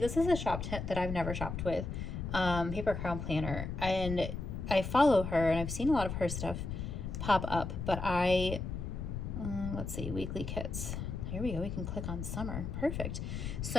is a shop that I've never shopped with, Paper Crown Planner. And I follow her, and I've seen a lot of her stuff pop up, but let's see, weekly kits. Here we go. We can click on summer. Perfect.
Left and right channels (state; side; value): noise; left; rumble, 5 dB below the sound